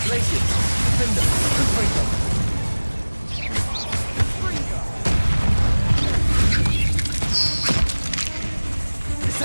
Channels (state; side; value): inverted; both; correlation -1.00